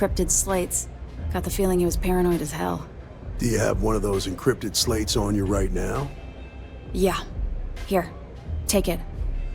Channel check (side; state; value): both; identical; correlation 1.00